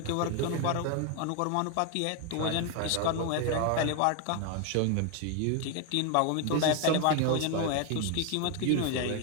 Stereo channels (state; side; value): different; both; correlation 0.01